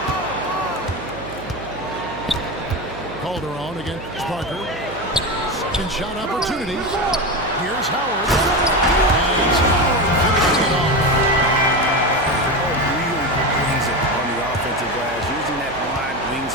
Calderon against Parker. Second shot opportunity. Here's Howard. And Howard finishing it off. Really brings it on the offensive glass, using that wide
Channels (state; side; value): noise; right; hum, 14 dB below the sound